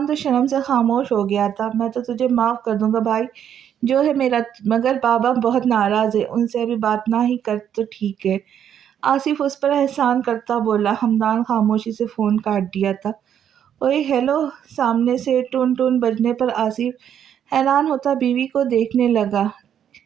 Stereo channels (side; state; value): left; quieter; 9.3 dB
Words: تو شرم سے خاموش ہو گیا تھا۔ میں تو تجھے معاف کر دوں گا بھائی، جو ہے میرا، مگر بابا بہت ناراض ہے، ان سے ابھی بات نہ ہی کر تو ٹھیک ہے۔ آصف اس پر احسان کرتا بولا۔ حمدان خاموشی سے فون کاٹ دیا تھا۔ اوئے ہیلو، سامنے سے ٹون ٹون بجنے پر آصف حیران ہوتا بیوی کو دیکھنے لگا۔